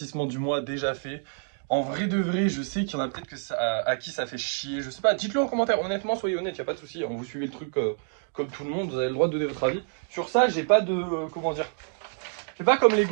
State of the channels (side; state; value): left; silent; 60 dB below the other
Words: du mois déjà fait. En vrai de vrai, je sais qu'il y en a peut-être que à qui ça fait chier. Je sais pas, dites-le en commentaire. Honnêtement, soyez honnête, y a pas de souci. Vous suivez le truc comme tout le monde, vous avez le droit de donner votre avis. Sur ça, j'ai pas de comment dire. C'est pas comme les